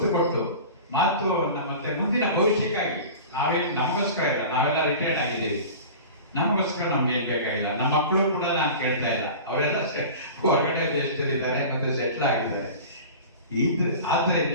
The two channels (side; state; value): both; inverted; correlation -0.36